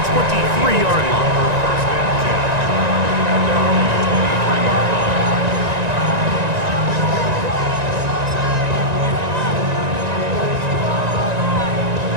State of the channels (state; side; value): late; left; 1.9 ms